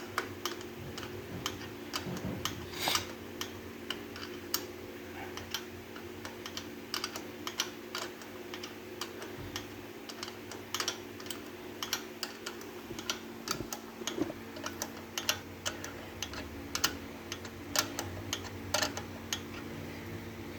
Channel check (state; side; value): identical; both; correlation 1.00